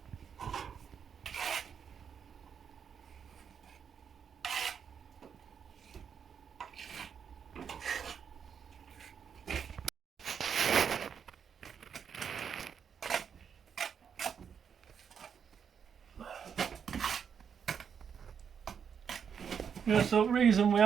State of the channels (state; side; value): quieter; left; 7.2 dB